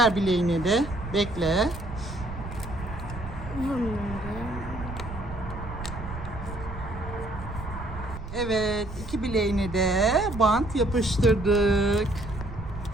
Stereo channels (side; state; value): right; noise; rumble, 10 dB below the sound